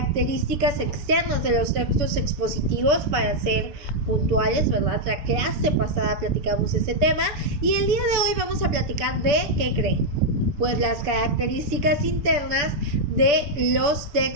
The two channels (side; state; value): left; late; 6.9 ms